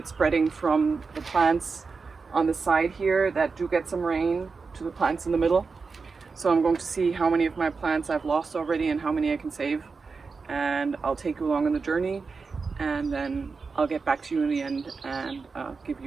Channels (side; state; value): left; quieter; 4.7 dB